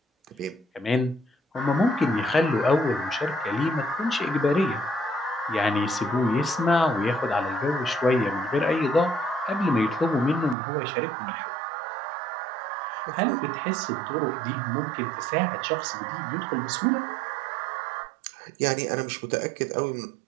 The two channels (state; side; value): drops out; left; at 10.6 s